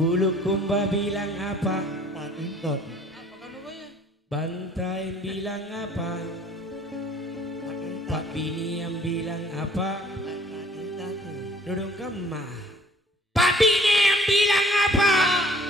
kumba bilang apa? Bantai bilang apa? Pak Bini yang bilang apa? Dudung kemah. Pak Bini yang bilang apa?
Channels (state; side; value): normal; both; correlation 0.55